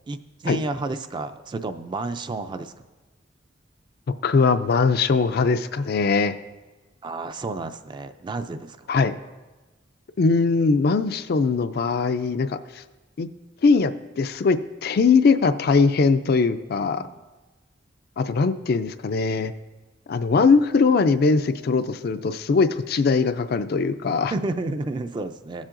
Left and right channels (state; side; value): quieter; right; 3.9 dB